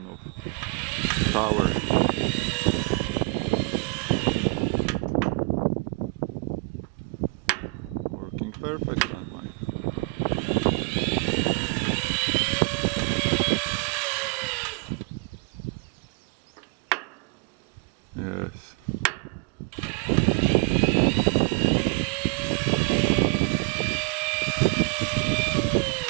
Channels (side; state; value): left; quieter; 31.4 dB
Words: of tower. Working perfectly. Yes.